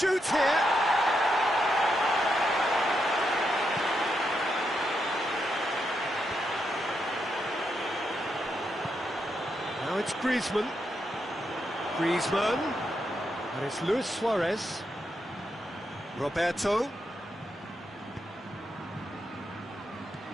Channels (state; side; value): normal; both; correlation 0.82